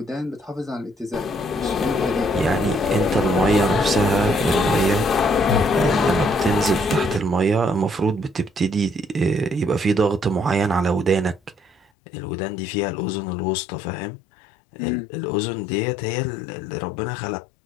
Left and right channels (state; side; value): drops out; right; at 11.9 s